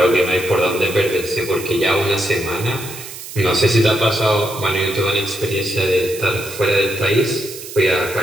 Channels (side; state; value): right; noise; hiss, 12 dB below the sound